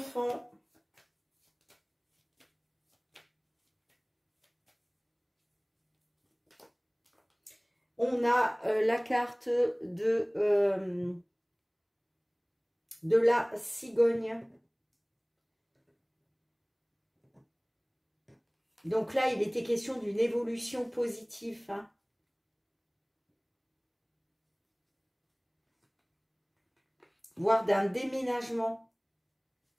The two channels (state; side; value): identical; both; correlation 1.00